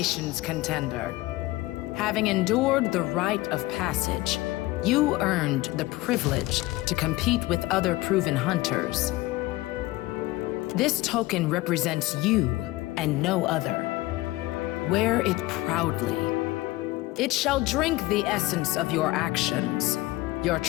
contender. Having endured the rite of passage, you earned the privilege to compete with other proven hunters. This token represents you and no other. Wear it proudly. It shall drink the essence of your actions, your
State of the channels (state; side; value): quieter; right; 19.1 dB